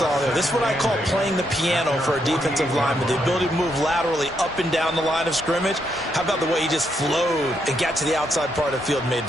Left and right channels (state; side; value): normal; both; correlation 0.78